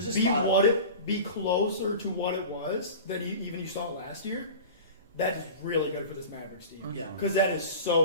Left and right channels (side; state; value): both; inverted; correlation -0.35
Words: a be spot up. be closer to what it was than you saw last year, that is really good for this Mavericks team. Mhm. Yeah. Because that is